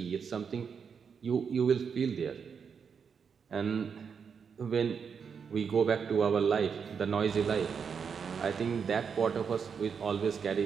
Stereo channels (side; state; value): left; quieter; 6.5 dB